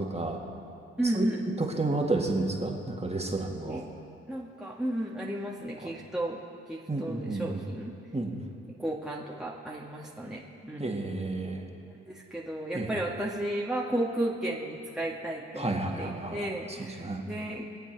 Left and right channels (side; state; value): both; normal; correlation 0.75